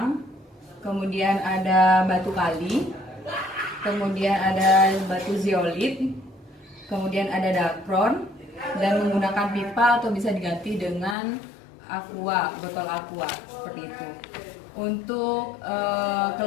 kemudian ada batu kali, kemudian ada batu zeolit, kemudian ada dacron, dan menggunakan pipa atau bisa diganti dengan aqua, botol aqua seperti itu. Untuk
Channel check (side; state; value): right; drops out; at 11.2 s